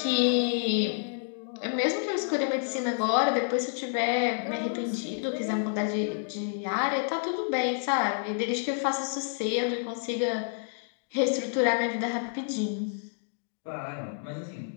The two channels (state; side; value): silent; right; digital silence